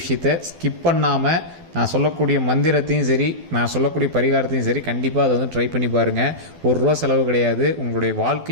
ஸ்கிப் பண்ணாமல் நான் சொல்லக்கூடிய மந்திரத்தையும் சரி, நான் சொல்லக்கூடிய பரிகாரத்தையும் சரி, கண்டிப்பாக அதை வந்து ட்ரை பண்ணி பாருங்கள். ₹1 செலவு கிடையாது. உங்களுடைய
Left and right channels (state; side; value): late; left; 12 ms